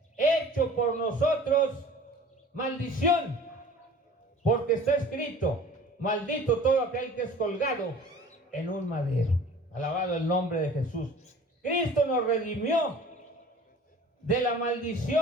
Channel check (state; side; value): normal; both; correlation 0.45